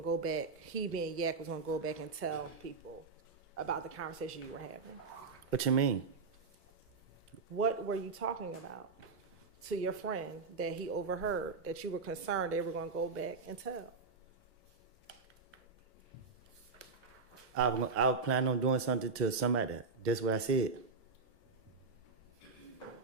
to go back, he being Yak was going to go back and tell people about the conversation you were having? What you mean? What were you talking about to your friend that he overheard that you were concerned they were going to go back and tell? I was planning on doing something to somebody. That's what I said.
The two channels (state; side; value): quieter; left; 4.5 dB